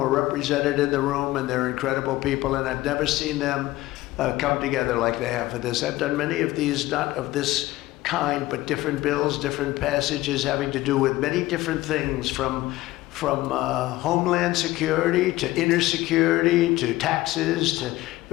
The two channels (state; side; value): quieter; right; 17.5 dB